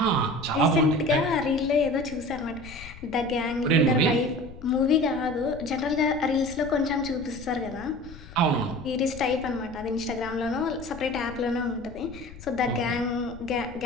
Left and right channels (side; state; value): left; noise; rumble, 17 dB below the sound